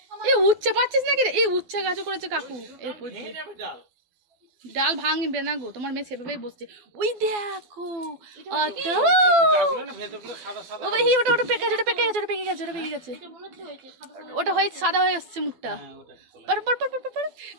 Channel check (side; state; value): left; late; 12 ms